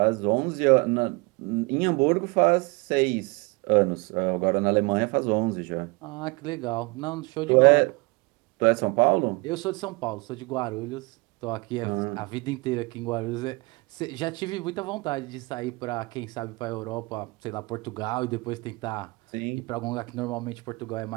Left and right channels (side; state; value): left; quieter; 26.4 dB